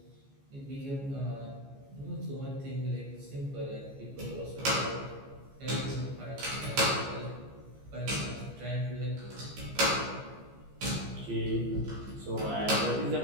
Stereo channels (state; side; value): late; left; 15 ms